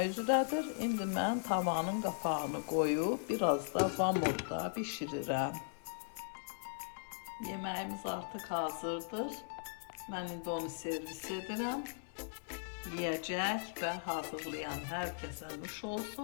üzrədir. İndi mən tavanın qapağını qoyub biraz da vam odda bişirirəm. Yeməyimiz artıq hazırdır. Mən indi onu servis edirəm. Yiyəcək və hazırlayan hər kəsə nuş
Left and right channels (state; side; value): silent; right; 52 dB below the other